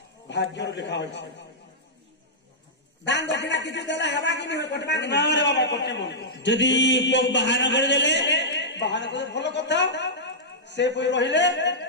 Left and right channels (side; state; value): both; normal; correlation -0.12